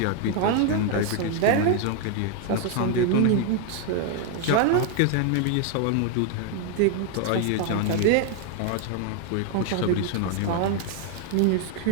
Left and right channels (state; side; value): different; both; correlation 0.01